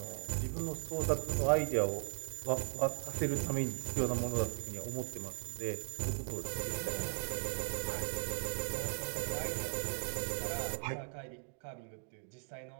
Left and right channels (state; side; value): silent; left; 52 dB below the other